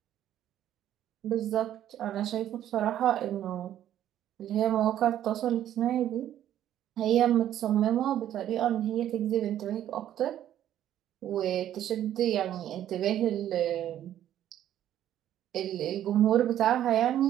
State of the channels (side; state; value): left; quieter; 11.5 dB